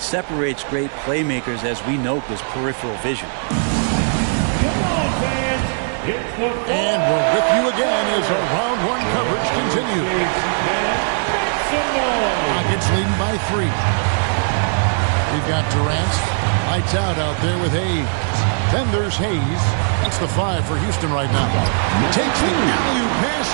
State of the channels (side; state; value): left; silent; digital silence